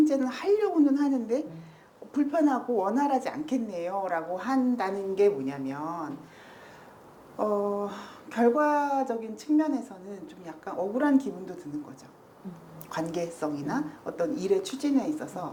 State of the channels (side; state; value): both; identical; correlation 1.00